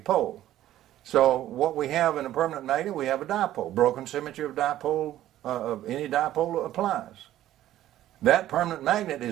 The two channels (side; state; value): left; quieter; 13.3 dB